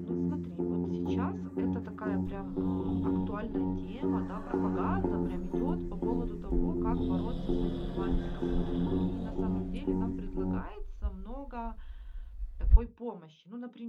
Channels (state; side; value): identical; both; correlation 1.00